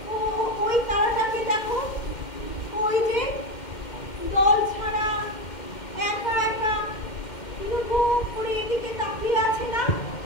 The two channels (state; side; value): late; right; 2.1 ms